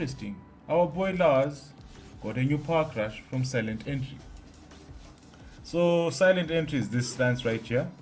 Our boy Lars got a new powercrush from Silent Entry. So silent entry is this stance right here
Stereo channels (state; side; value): identical; both; correlation 1.00